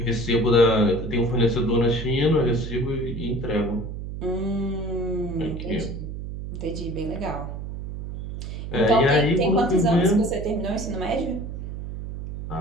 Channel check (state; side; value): noise; right; hum, 7 dB below the sound